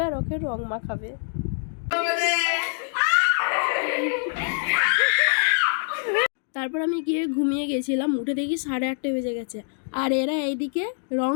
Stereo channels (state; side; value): silent; right; digital silence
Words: আর ওকে রং মাখাবে। তারপর আমি গিয়ে ঘুমিয়ে গেছিলাম, উঠে দেখি 8:30 বেজে গেছে। আর এরা এইদিকে রং